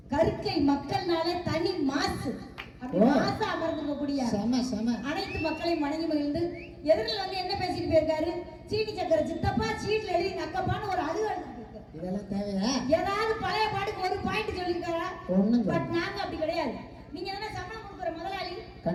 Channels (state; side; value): identical; both; correlation 1.00